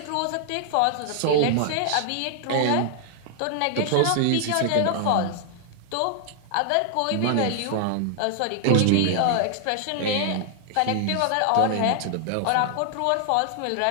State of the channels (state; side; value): different; both; correlation 0.00